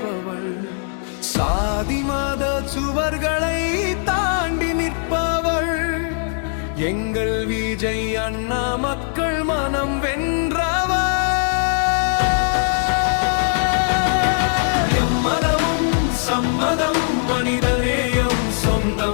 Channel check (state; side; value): silent; right; 66 dB below the other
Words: சாதி மத சுவர்களை தாண்டி நிற்பவள். எங்கள் விஜய் அண்ணா மக்கள் மனம் வென்றவர். எம்மதமும் சம்மதம், மனிதநேயம்